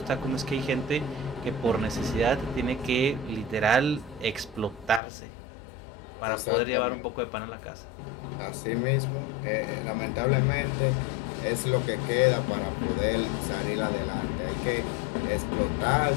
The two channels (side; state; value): right; drops out; at 5.0 s